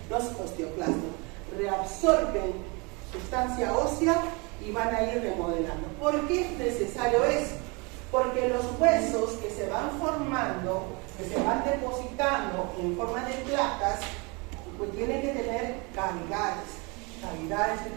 los osteoclastos. Reabsorben sustancia ósea y van a ir remodelando. ¿Por qué es necesario eso? Porque los huesos que se van formando, que se van depositando en forma de placas, pues tienen que tener cavidades. Cavidades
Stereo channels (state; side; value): quieter; left; 29.2 dB